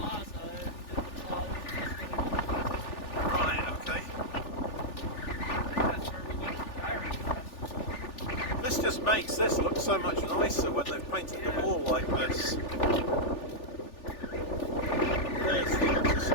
and the plaza is gonna Right, okay. that's where we went to Pirate Fest. This just makes this look so much nicer when they've painted the wall like this. There's the artist's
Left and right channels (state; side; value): late; right; 3.4 ms